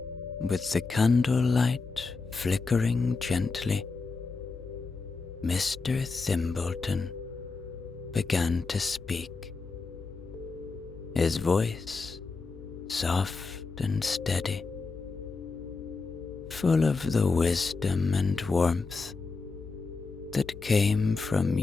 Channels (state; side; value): quieter; right; 4.2 dB